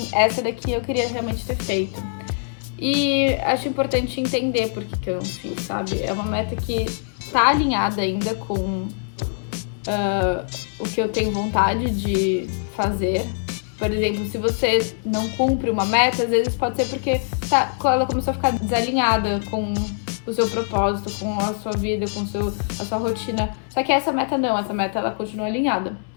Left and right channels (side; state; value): right; silent; 63 dB below the other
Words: essa daqui eu queria realmente ter feito. E acho importante entender por que eu não fiz, sabe? É uma meta que tá alinhada ainda com o que eu tenho vontade de fazer. Por exemplo, se você não cumpre uma meta, às vezes pode ser porque ela começou a ficar desalinhada com o seu propósito, com a sua vida, com a sua rotina. Só que essa meta não, essa meta ela continua alinhada.